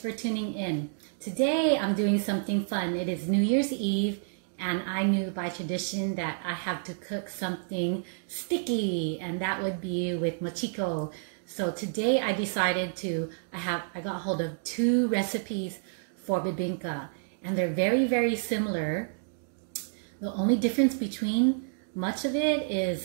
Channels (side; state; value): left; silent; digital silence